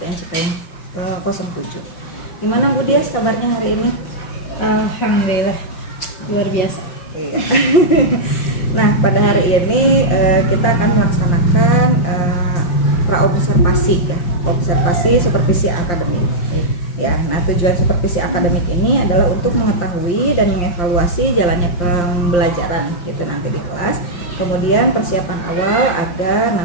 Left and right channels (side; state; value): right; late; 5.7 ms